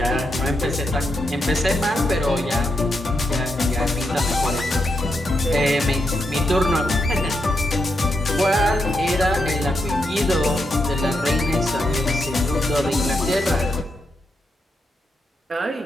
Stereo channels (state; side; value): normal; both; correlation 0.83